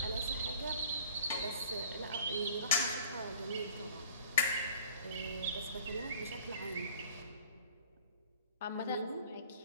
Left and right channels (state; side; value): inverted; both; correlation -0.48